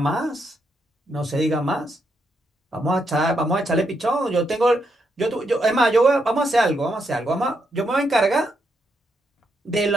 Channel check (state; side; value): normal; both; correlation 0.79